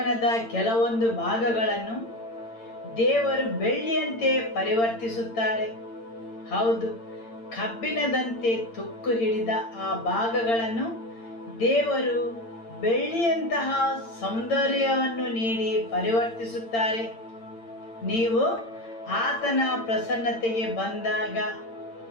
ಕೆಲವೊಂದು ಭಾಗಗಳನ್ನು ದೇವರು ಬೆಳ್ಳಿಯಂತೆ ಪರಿವರ್ತಿಸುತ್ತಾರೆ. ಹೌದು, ಕಬ್ಬಿಣದಂತೆ ತುಕ್ಕು ಹಿಡಿದ ಆ ಭಾಗಗಳನ್ನು ದೇವರು ಬೆಳ್ಳಿಯಂತಹ ಸೌಂದರ್ಯವನ್ನು ನೀಡಿ ಪರಿವರ್ತಿಸುತ್ತಾರೆ. ನೀವು ಆತನ ಪ್ರಸನ್ನತೆಗೆ ಬಂದಾಗ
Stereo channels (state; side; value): late; right; 8.8 ms